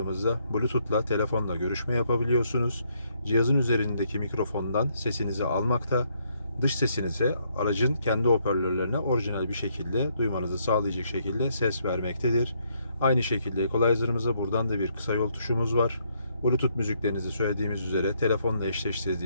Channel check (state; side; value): inverted; both; correlation -0.72